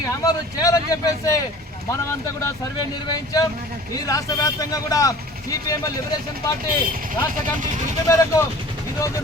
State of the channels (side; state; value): both; normal; correlation 0.45